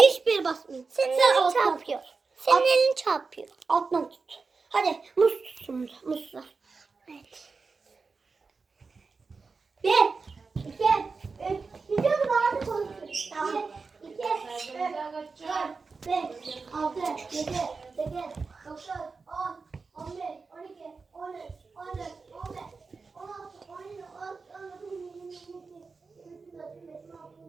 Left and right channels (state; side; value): quieter; left; 4.5 dB